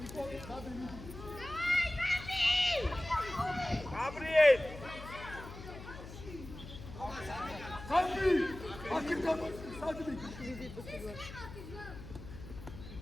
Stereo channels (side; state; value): left; noise; hum, 13 dB below the sound